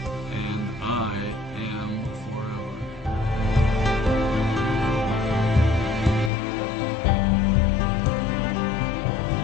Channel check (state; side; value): drops out; right; at 6.3 s